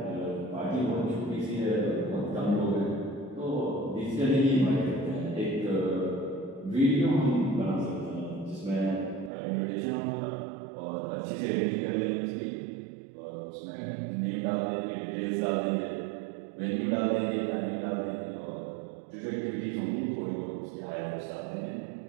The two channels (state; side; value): drops out; left; at 9.3 s